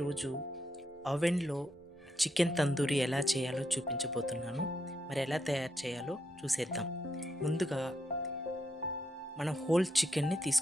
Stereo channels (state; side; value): normal; both; correlation 0.80